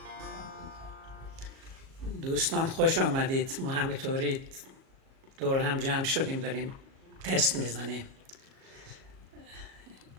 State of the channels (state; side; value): late; left; 37 ms